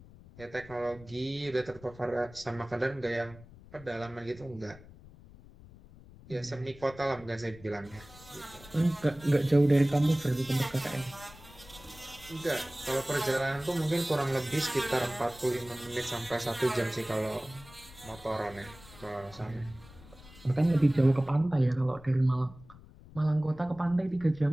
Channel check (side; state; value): left; noise; rumble, 20 dB below the sound